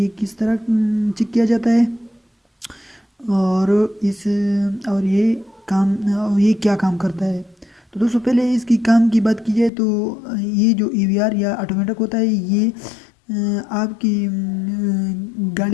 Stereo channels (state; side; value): drops out; right; at 9.7 s